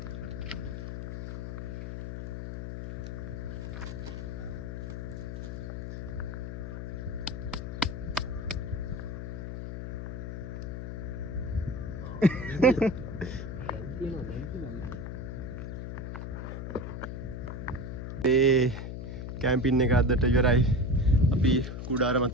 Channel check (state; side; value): noise; left; hum, 6 dB below the sound